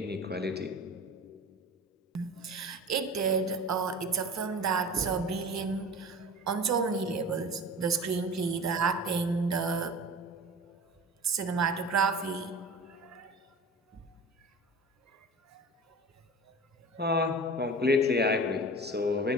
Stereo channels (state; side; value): normal; both; correlation 0.36